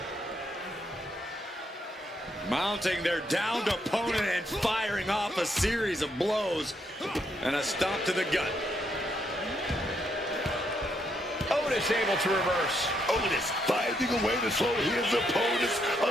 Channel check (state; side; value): normal; both; correlation 0.76